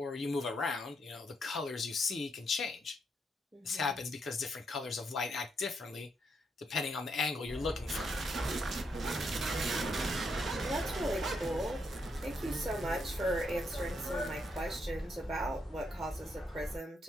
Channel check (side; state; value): both; normal; correlation 0.78